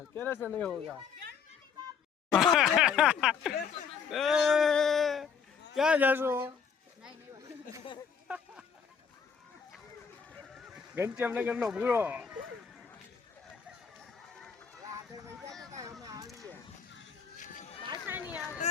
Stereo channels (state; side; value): quieter; right; 6.6 dB